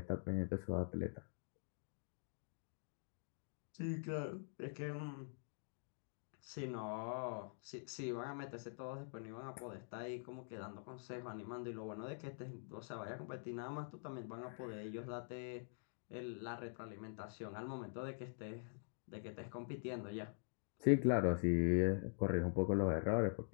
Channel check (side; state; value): right; silent; digital silence